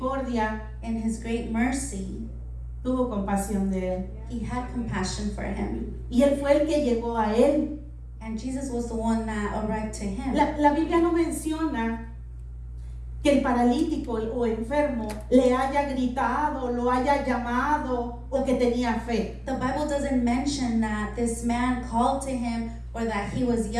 in his great mercy, tuvo compasión de él. he had compassion for him. Y él fue el que llegó a él. And Jesus was the one that arrived to him. La Biblia no menciona que el paralítico o enfermo le haya gritado, lo haya llamado o que tenía fe. The Bible doesn't mention that this man called to him or that he was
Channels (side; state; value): both; identical; correlation 1.00